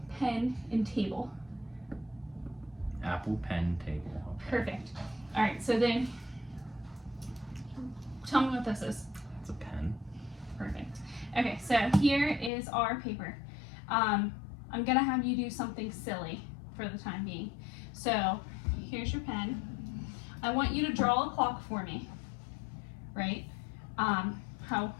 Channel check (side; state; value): right; drops out; at 12.5 s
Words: pen, and table. Apple, pen, table. Okay. Perfect. All right, so then tell me what this is. It's a pen. Perfect. Okay, so here is our paper. I'm gonna have you do something silly for the time being. So here's your pen. I want you to draw a clock for me, right?